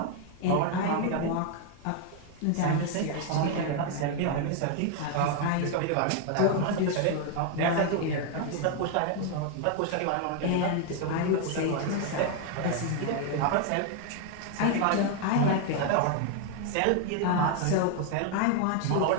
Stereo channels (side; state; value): both; different; correlation 0.00